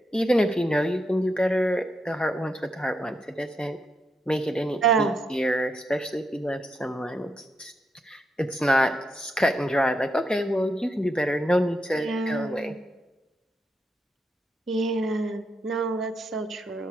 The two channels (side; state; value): both; normal; correlation 0.82